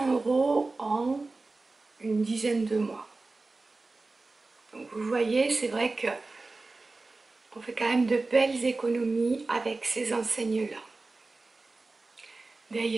euros en une dizaine de mois. Donc vous voyez, c'est vrai que on fait quand même de belles économies avec ces enseignes-là.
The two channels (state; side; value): quieter; left; 3.5 dB